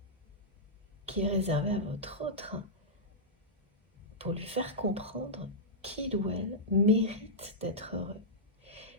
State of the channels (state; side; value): normal; both; correlation -0.10